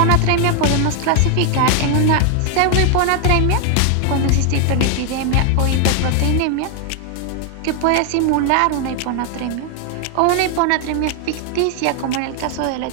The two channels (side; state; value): both; different; correlation 0.00